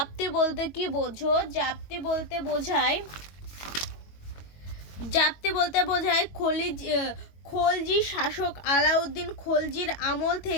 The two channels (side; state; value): right; late; 21 ms